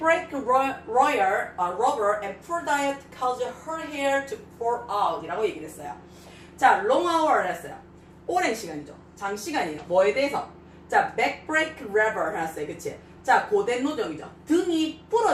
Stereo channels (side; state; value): both; identical; correlation 1.00